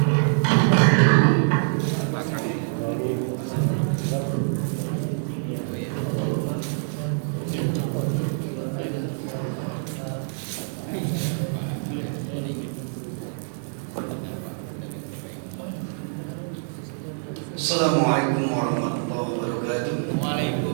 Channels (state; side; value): silent; left; digital silence